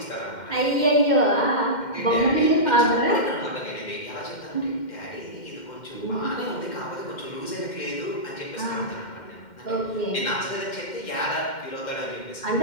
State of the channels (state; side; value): late; right; 2.1 ms